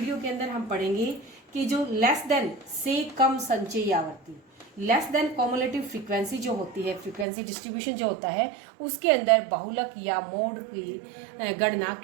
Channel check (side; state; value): left; drops out; at 7.2 s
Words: के अंदर हम पढ़ेंगे कि जो लेस देन से कम संचयी आवर्ती, लेस देन कॉमुलेटिव फ्रीक्वेंसी जो होती है, फ्रीक्वेंसी डिस्ट्रीब्यूशन जो होता है, उसके अंदर बहुलक या मोड की गणना